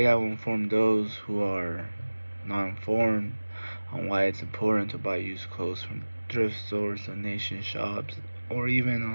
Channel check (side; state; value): both; inverted; correlation -1.00